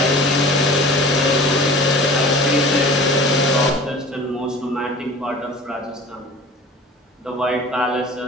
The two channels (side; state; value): both; normal; correlation 0.41